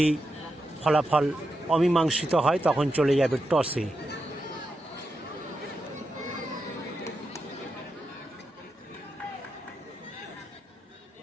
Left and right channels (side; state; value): both; normal; correlation 0.86